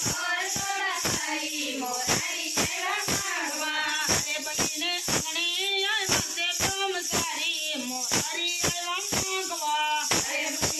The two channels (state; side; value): identical; both; correlation 1.00